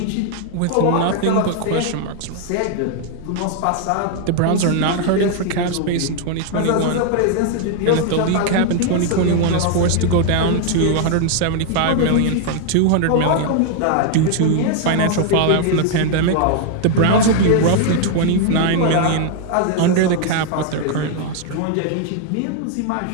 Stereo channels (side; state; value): both; different; correlation 0.00